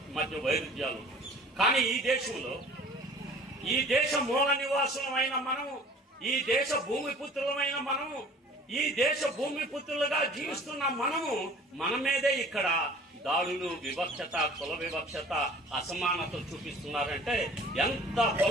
మధ్య వైరుధ్యాలు. కానీ ఈ దేశంలో, ఈ దేశ మూల నివాసులమైన మనము, ఈ దేశ భూమిపుత్రులమైన మనము, ఈ దేశ భూమిపుత్రులుగా జీవిస్తున్న మనము మన మీదే ఇక్కడ దాడులు, వివక్షత, కుల వివక్షత, అసమానత చూపిస్తున్నారంటే ఎంత కుల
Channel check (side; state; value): both; normal; correlation 0.48